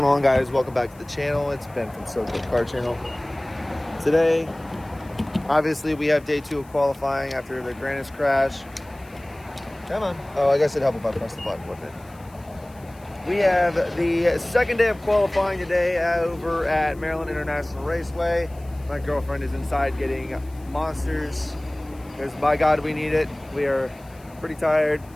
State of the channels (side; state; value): left; noise; hiss, 27 dB below the sound